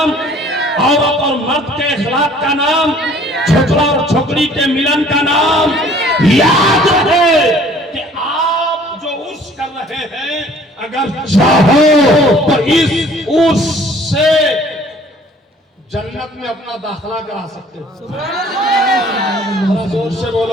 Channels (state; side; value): normal; both; correlation 0.54